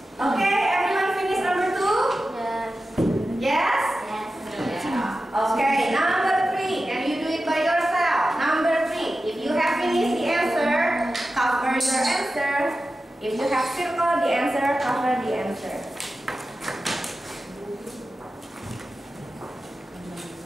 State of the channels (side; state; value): both; normal; correlation 0.93